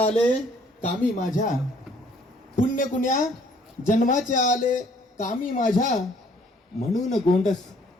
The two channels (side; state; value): both; normal; correlation 0.61